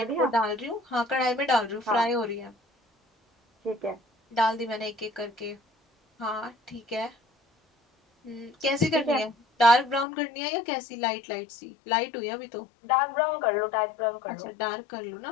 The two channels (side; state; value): right; drops out; at 10.1 s